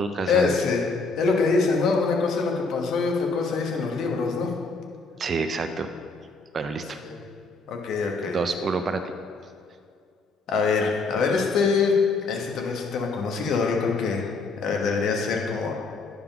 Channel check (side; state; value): right; quieter; 3.5 dB